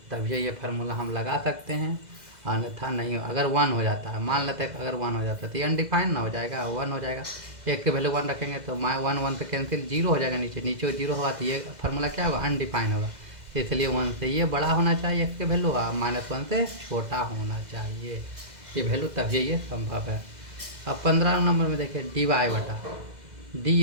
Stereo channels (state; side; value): late; left; 2.0 ms